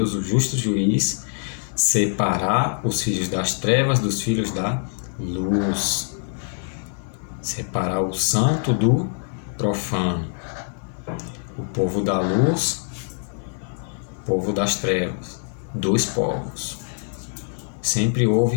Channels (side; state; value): right; silent; digital silence